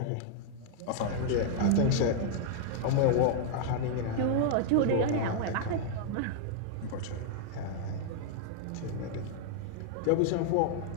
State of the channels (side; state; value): both; different; correlation -0.01